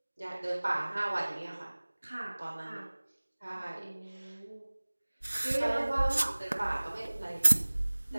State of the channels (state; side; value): inverted; both; correlation -1.00